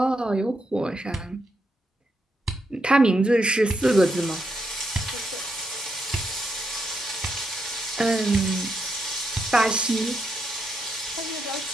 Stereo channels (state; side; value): normal; both; correlation 0.81